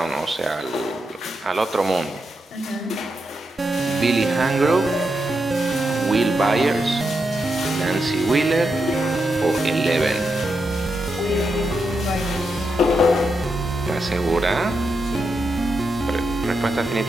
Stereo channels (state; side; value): normal; both; correlation 0.85